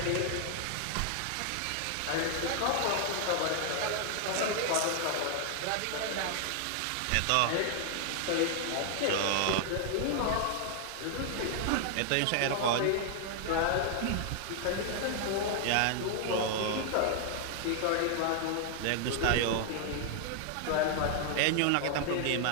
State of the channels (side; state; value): both; different; correlation 0.00